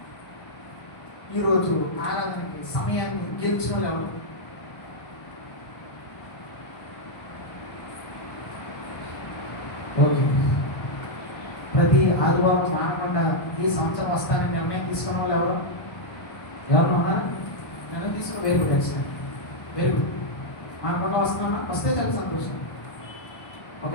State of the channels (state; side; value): late; right; 1.0 ms